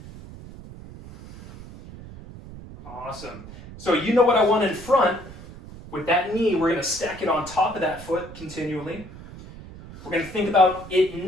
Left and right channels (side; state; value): right; noise; rumble, 16 dB below the sound